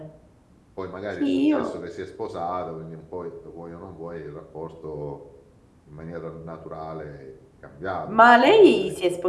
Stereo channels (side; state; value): both; identical; correlation 1.00